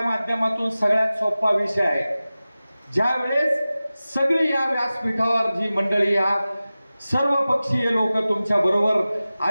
माध्यमातून सगळ्यात सोपा विषय आहे. ज्या वेळेस सगळी या व्यासपीठावर जी मंडळी, या सर्व पक्षीय लोक तुमच्या बरोबर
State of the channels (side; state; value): both; inverted; correlation -0.96